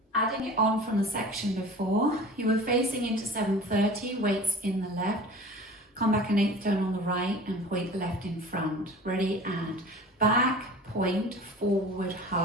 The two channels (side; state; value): both; normal; correlation 0.41